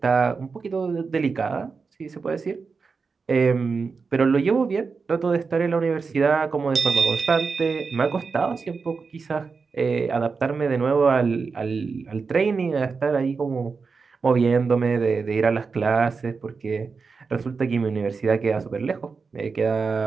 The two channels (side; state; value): left; quieter; 4.9 dB